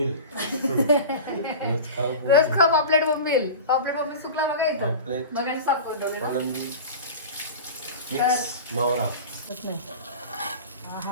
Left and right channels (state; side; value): inverted; both; correlation -0.32